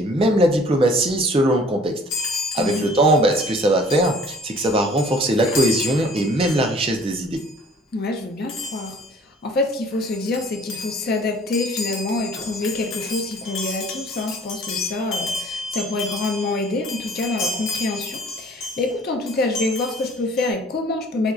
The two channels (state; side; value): normal; both; correlation 0.52